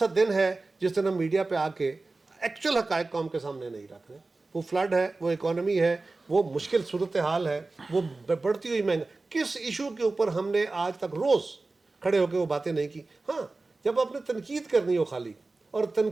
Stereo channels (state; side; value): quieter; left; 3.4 dB